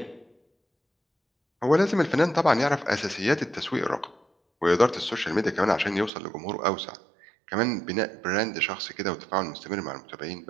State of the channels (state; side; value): drops out; left; at 6.1 s